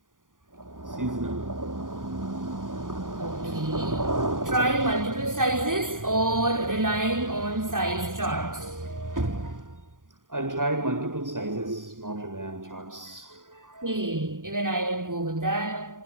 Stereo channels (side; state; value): left; late; 0.89 ms